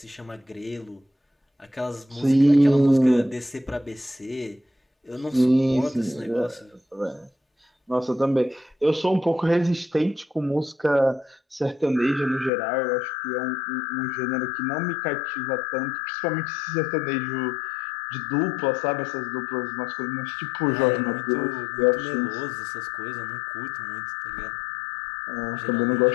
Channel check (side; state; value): right; drops out; at 12.5 s